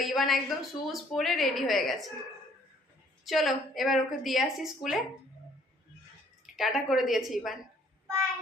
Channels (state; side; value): normal; both; correlation 0.61